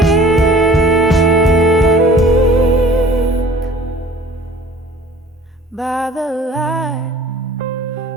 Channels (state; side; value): normal; both; correlation 0.50